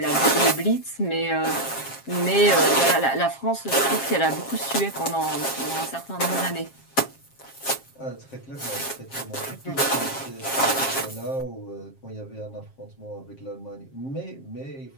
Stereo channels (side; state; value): right; late; 7.5 ms